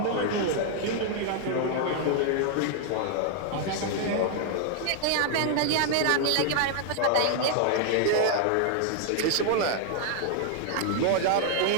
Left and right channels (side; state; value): both; different; correlation 0.00